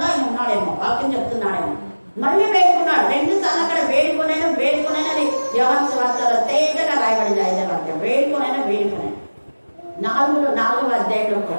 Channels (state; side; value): inverted; both; correlation -1.00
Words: ఆయన ఉన్నాడేమో, వాక్యం చెప్తున్నాడేమో. మళ్ళీ వేడుకున్నాడు 2 సార్లు. అక్కడ వేడుకునైనా యోహాను సువార్తలో తేటగా రాయబడింది 5వ అధ్యాయం. వేడుకునైనా 4వ అధ్యాయంలో